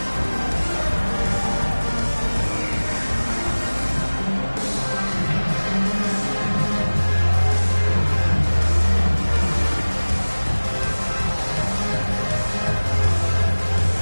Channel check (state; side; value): inverted; both; correlation -1.00